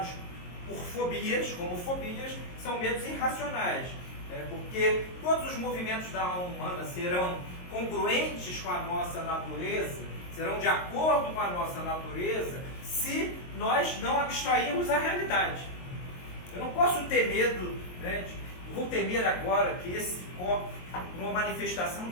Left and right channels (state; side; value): late; right; 22 ms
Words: por fobias, como fobias, são medos irracionais. Porque todos os movimentos da alma humana serão congruentes com a nossa natureza, serão de acordo com a nossa natureza, se nós não abstrairmos a realidade. Eu não posso ter medo, eu vou temer agora que esse copo, por uma manifestação